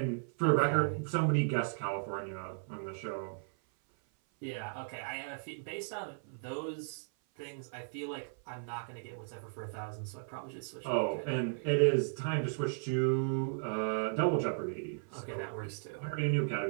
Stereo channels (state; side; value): silent; left; 54 dB below the other